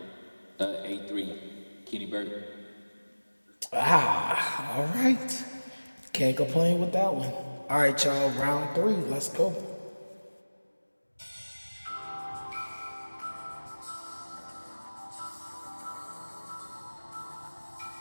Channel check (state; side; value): inverted; both; correlation -1.00